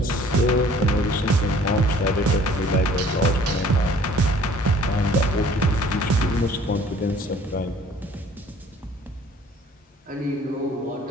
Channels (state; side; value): normal; both; correlation 0.53